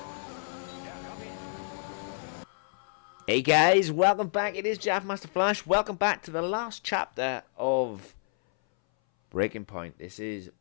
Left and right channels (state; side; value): silent; right; 58 dB below the other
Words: Hey guys, welcome back. It is Jav Master Flash. Welcome back to the last chapter of Breaking Point. This is